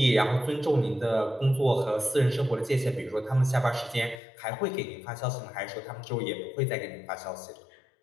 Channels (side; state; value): right; drops out; at 4.2 s